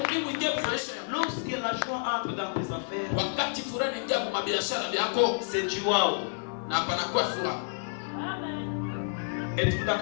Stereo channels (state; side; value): silent; right; digital silence